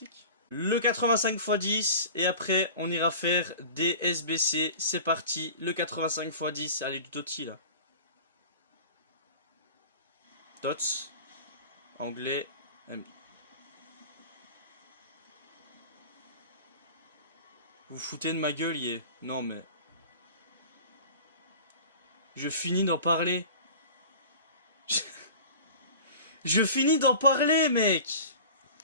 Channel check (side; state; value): both; inverted; correlation -0.39